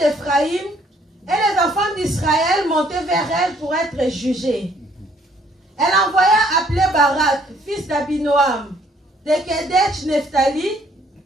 et les enfants d'Israël montaient vers elle pour être jugés. Elle envoya appeler Barak, fils d'Abinoam, de Kedesh Nephtali,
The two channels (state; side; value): normal; both; correlation 0.64